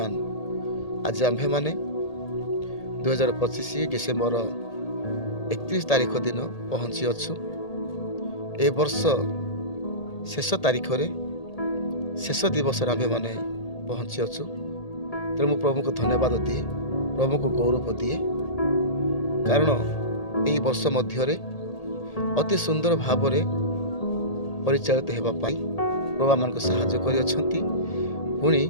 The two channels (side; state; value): right; late; 1.8 ms